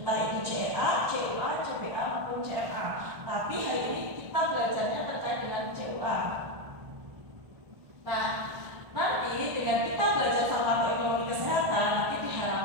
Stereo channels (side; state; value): left; late; 1.4 ms